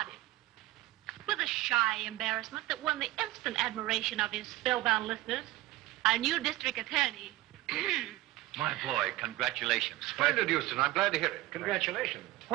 With a shy embarrassment that won the instant admiration of his spellbound listeners, our new district attorney... My boy, congratulations. Splendid, Houston. I'm glad to hear it. Congratulations.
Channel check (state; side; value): quieter; left; 17.3 dB